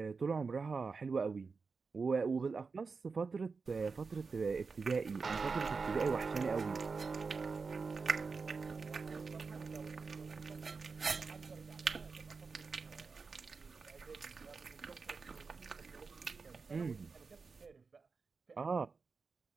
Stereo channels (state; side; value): quieter; left; 4.7 dB